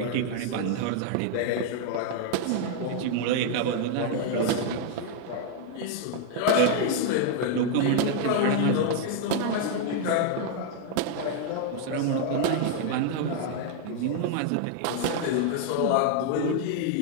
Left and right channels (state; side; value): different; both; correlation 0.00